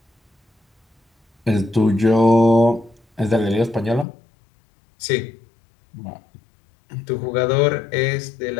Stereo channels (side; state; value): right; drops out; at 4.0 s